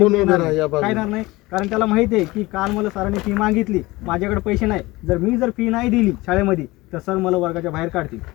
काय नाही. कारण त्याला माहिती आहे की काल मला सरांनी फी मागितली, माझ्याकडे पैसे नाही. जर फी नाही दिली शाळेमध्ये तर सर मला वर्गाच्या बाहेर काढतील.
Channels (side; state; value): right; quieter; 20.7 dB